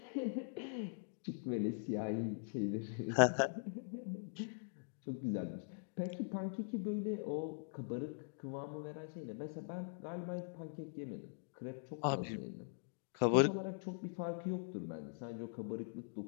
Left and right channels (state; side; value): silent; right; digital silence